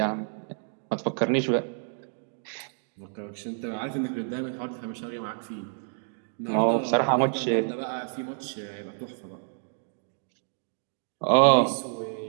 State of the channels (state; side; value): silent; left; digital silence